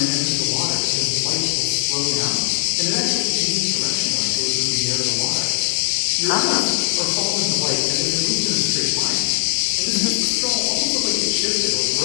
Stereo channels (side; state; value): right; silent; 66 dB below the other